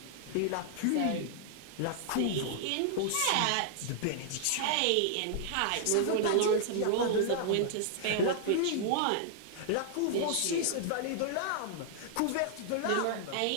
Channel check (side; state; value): both; different; correlation -0.01